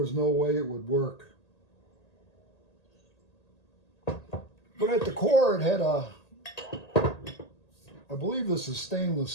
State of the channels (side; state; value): right; late; 1.8 ms